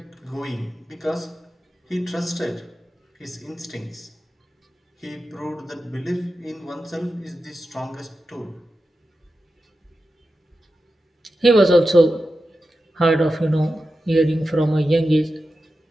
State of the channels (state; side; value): normal; both; correlation 0.91